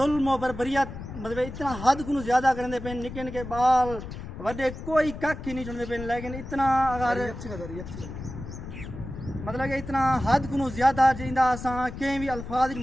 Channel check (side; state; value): left; noise; rumble, 10 dB below the sound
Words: و بربریت مطلب اتنا حد کو زیادہ کرنے پہ نکے نکے بال وڈے کوئی کک ہی نہیں چڑھتے پہ لیکن اتنا اگر مطلب کہ اتنا حد کو زیادہ جیندا اساں کہیں بھی الفاظ